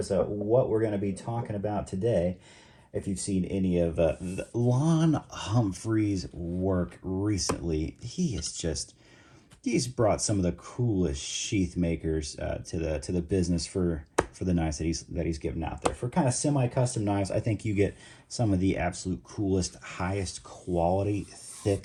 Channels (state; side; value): identical; both; correlation 1.00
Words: what we're gonna be talking about today. If you've seen any of Lon Humphrey's work recently, he's brought some of the coolest sheath makers to the business for the knives that he's given out there. For kind of semi-custom knives, I think you get some of the absolute coolest, highest quality,